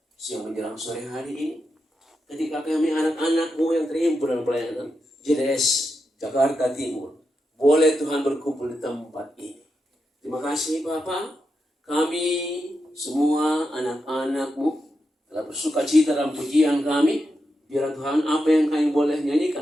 siang menjelang sore hari ini, ketika kami anak-anak-Mu yang terhimpun dalam pelayanan JDS Jakarta Timur, boleh Tuhan berkumpul di tempat ini. Terima kasih Bapa, kami semua anak-anak-Mu telah bersuka cita dalam pujian kami. Biar Tuhan apa yang kami boleh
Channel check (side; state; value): both; normal; correlation 0.87